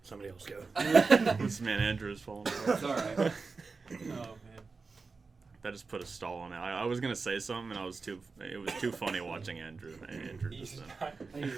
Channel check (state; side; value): quieter; left; 4.4 dB